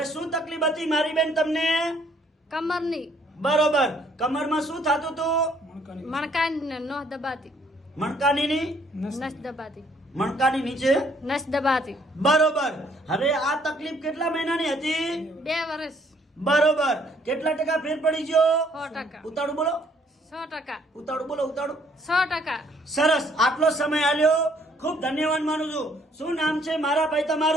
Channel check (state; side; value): normal; both; correlation 0.64